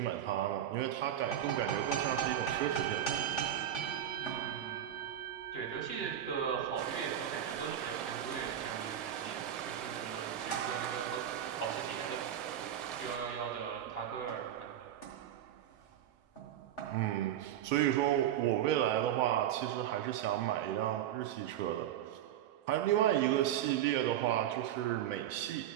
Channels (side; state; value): left; quieter; 10.9 dB